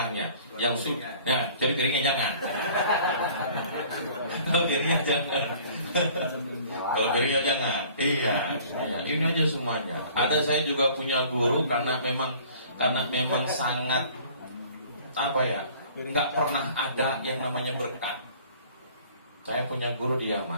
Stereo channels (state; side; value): inverted; both; correlation -0.51